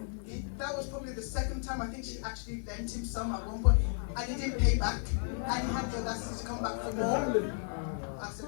that was probably the second time. I think she actually lent him some at one point, and he didn't pay back, and he had the audacity to come back for more. I said,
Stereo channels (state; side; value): silent; right; 55 dB below the other